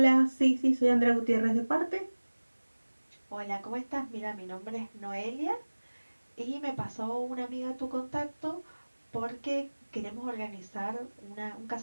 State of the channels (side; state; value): both; inverted; correlation -1.00